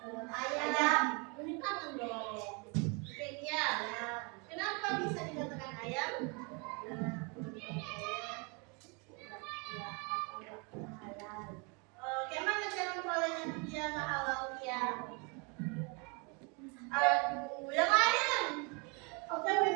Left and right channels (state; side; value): quieter; left; 32.5 dB